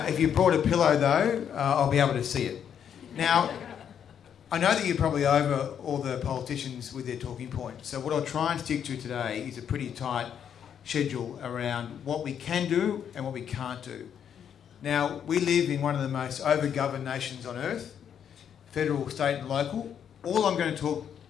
you brought a pillow, though, I'll be able to see it. Now, I know that you're probably over all the politicians with their talking points, so what I'll try and stick to today is a pretty tight schedule around what we can do and what we can't do. Now, we live in one of the most over-governed nations on earth, federal, state and local. All I'm going to talk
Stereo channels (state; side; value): quieter; right; 8.5 dB